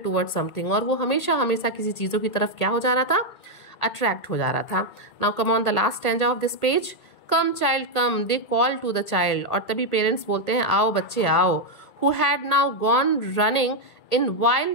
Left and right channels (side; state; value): right; late; 1.8 ms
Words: towards something, और वो हमेशा किसी चीज़ों की तरफ क्या हो जा रहा था, अट्रैक्ट हो जा रहा था। Now come on the last stanza of this page. Come child come, they call to the child. और तभी पेरेंट्स बोलते हैं आओ बच्चे आओ। Who had now gone running in